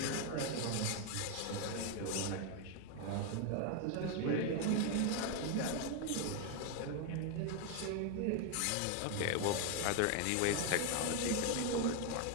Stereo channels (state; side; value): different; both; correlation 0.01